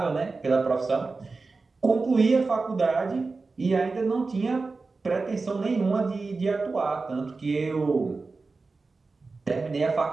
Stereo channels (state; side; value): quieter; left; 3.9 dB